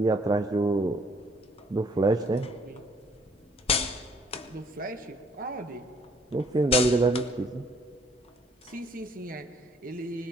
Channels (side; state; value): both; normal; correlation 0.62